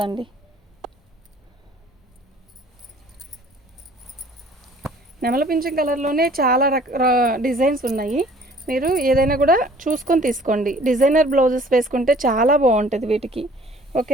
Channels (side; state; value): both; normal; correlation 0.53